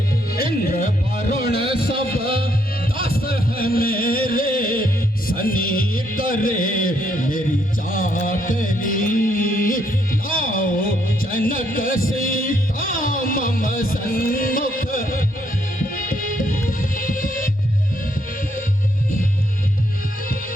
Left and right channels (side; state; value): both; normal; correlation 0.73